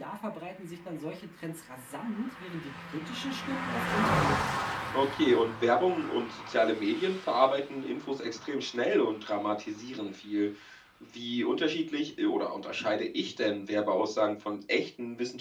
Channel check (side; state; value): both; identical; correlation 1.00